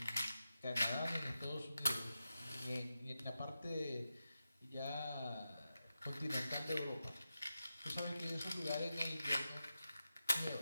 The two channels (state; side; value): inverted; both; correlation -0.90